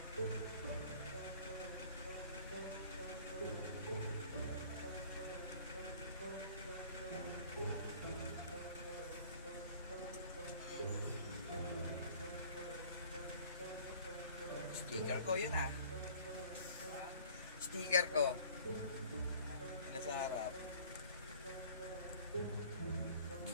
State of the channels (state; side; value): inverted; both; correlation -0.51